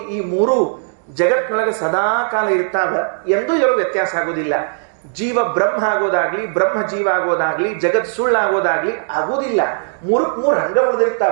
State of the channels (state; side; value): silent; left; digital silence